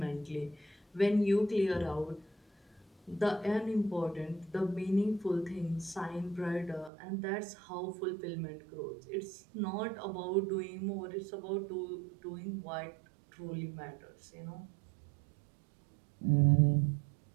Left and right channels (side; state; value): left; drops out; at 6.9 s